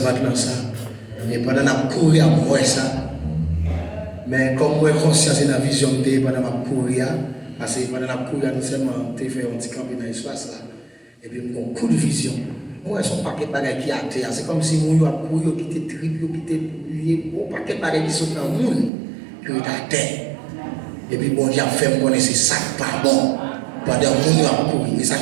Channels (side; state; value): left; drops out; at 18.9 s